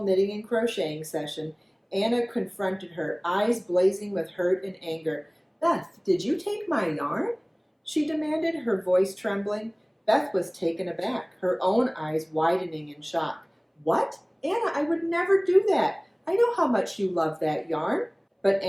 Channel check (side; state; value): both; identical; correlation 1.00